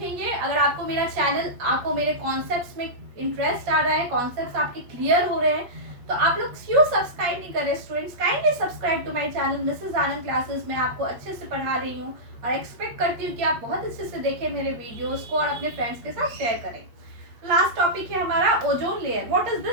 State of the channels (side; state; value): left; late; 8.6 ms